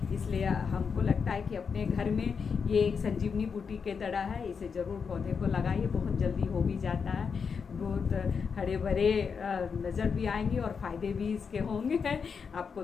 इसलिए हमको लगता है कि अपने घर में ये एक संजीवनी बूटी के तरह है, इसे ज़रूर पौधे को लगाइए, बहुत जल्दी हो भी जाता है। बहुत हरे भरे नज़र भी आएंगे और फ़ायदे भी इसके होंगे। आपको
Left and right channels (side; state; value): right; quieter; 5.9 dB